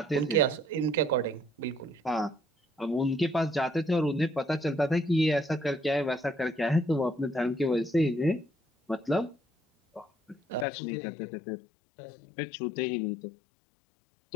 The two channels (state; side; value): drops out; right; at 10.7 s